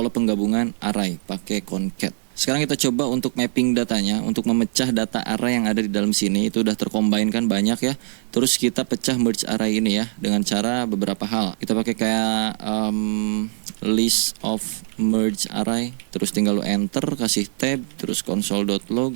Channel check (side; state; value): left; silent; 64 dB below the other